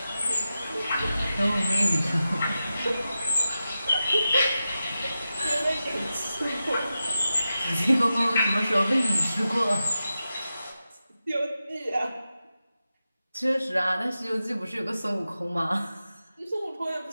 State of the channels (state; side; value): inverted; both; correlation -0.91